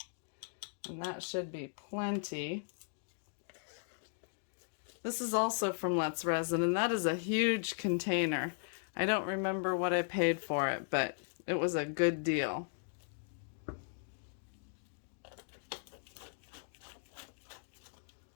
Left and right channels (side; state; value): right; silent; digital silence